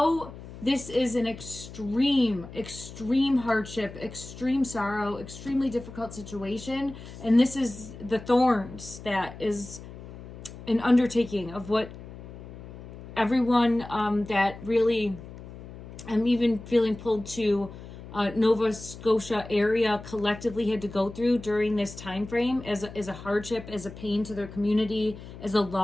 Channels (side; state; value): left; noise; hum, 14 dB below the sound